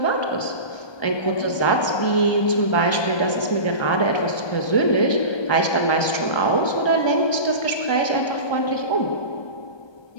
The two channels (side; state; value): right; late; 1.2 ms